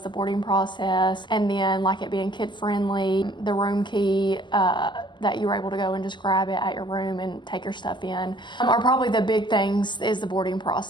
the boarding process, and then like it being kid friendly, the room key that you were able to go and just grab it at your room and take your stuff in, are probably the big things is the boarding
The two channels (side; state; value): right; late; 0.22 ms